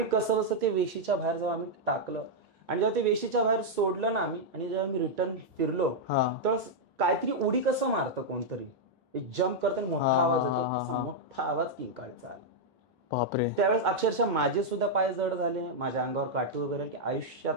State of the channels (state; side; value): normal; both; correlation -0.03